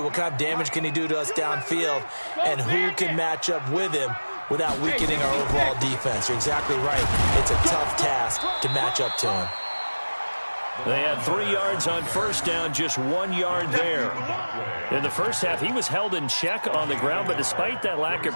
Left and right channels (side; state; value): both; inverted; correlation -1.00